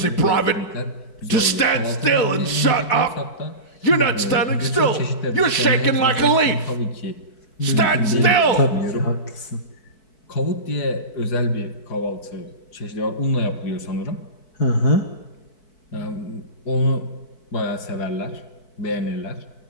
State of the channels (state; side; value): late; right; 4.6 ms